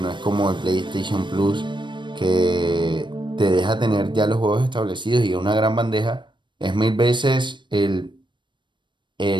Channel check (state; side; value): late; left; 0.23 ms